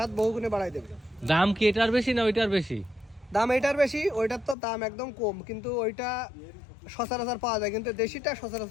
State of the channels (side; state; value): right; drops out; at 4.5 s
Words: বহুগুণে বাড়াই দেবে। দাম কি এটার বেশি না ওইটার বেশি? দাম এটার বেশি, ওইটার তো দাম একদম কম, কিন্তু ওইটা সচরাচর পাওয়া যায়, কিন্তু দেশিটা